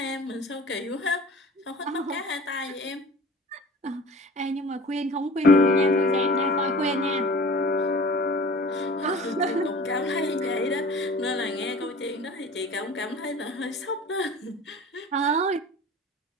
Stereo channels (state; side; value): normal; both; correlation 0.42